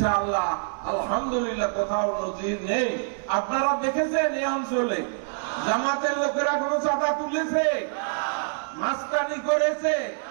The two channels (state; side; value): silent; left; 59 dB below the other